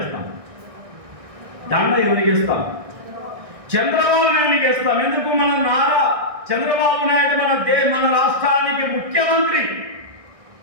దండ ఎవరికి ఇస్తాం? చంద్రబాబు నాయుడికి ఇస్తాం. ఎందుకు? మన నారా చంద్రబాబు నాయుడు మన రాష్ట్రానికి ముఖ్యమంత్రి.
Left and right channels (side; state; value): left; late; 1.6 ms